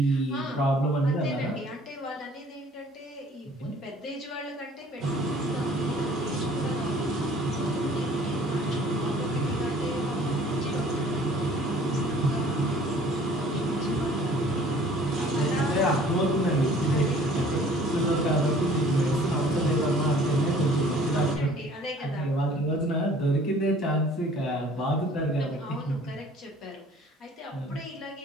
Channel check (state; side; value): normal; both; correlation 0.53